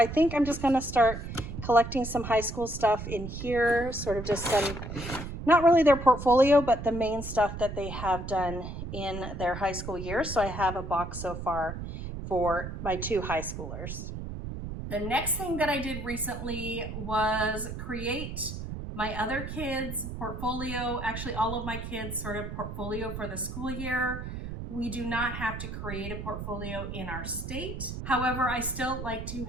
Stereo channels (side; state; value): right; noise; rumble, 7 dB below the sound